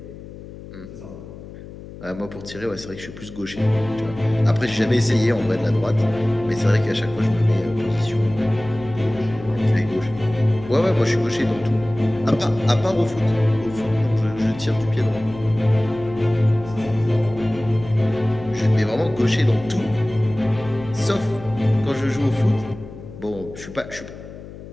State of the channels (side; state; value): left; noise; hum, 15 dB below the sound